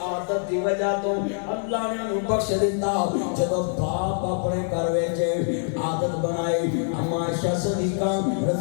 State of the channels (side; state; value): right; silent; 62 dB below the other